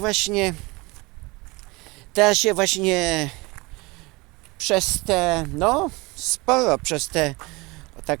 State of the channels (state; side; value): quieter; left; 24.7 dB